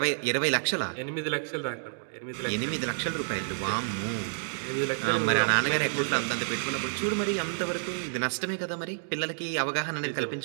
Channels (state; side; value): silent; left; digital silence